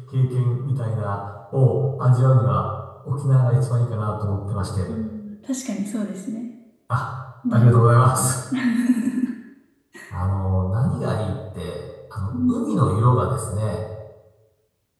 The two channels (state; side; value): identical; both; correlation 1.00